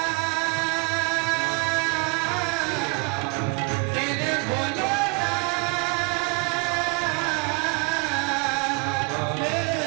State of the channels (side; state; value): left; quieter; 30.7 dB